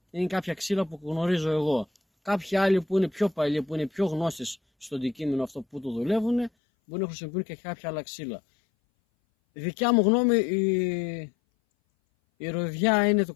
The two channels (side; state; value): right; drops out; at 6.5 s